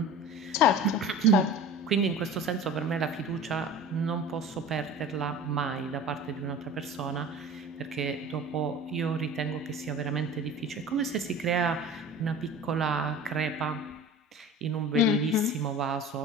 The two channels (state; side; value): normal; both; correlation 0.38